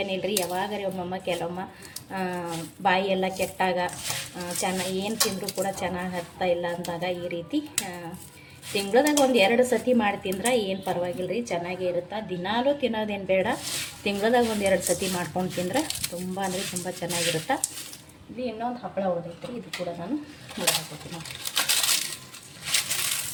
ಯಾವಾಗರೇ ಒಮ್ಮಮ್ಮ ಕೆಲವೊಮ್ಮ ಬಾಯಿ ಎಲ್ಲ ಕೆಟ್ಟಾಗ ಏನು ತಿಂದರೂ ಕೂಡ ಚೆನ್ನಾಗಿ ಹತ್ತಾ ಇಲ್ಲ ಅಂದಾಗ ಈ ರೀತಿ ತಿಂಗಳದಾಗ ಒಂದು 2 ಸತಿ ಮಾಡಿ ತಿಂದ್ರೆ ಏನು ಪರವಾಗಿಲ್ಲ ರೀ, ಚೆನ್ನಾಗೇ ಇರುತ್ತೆ. ದಿನಾಲೂ ತಿನ್ನೋದೇನು ಬೇಡ, ತಿಂಗಳದಾಗ ಒಂದು 2 ಸತಿ ಮಾಡ್ಕೊಂಡು ತಿಂದ್ರೆ ತುಂಬ ಅಂದರೆ ತುಂಬ ಚೆನ್ನಾಗಿರುತ್ತೆ. ಇದು ಇನ್ನೊಂದು ಹಪ್ಪಳ ಉಳಿದೈತೆ ರೀ, ಇದು ಕೂಡ ನಾನು ಮುರಿದು ಹಾಕೋತೀನಿ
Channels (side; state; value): both; identical; correlation 1.00